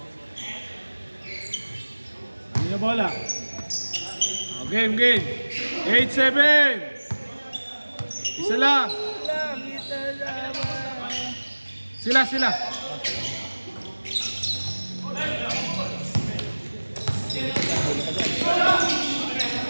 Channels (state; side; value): inverted; both; correlation -1.00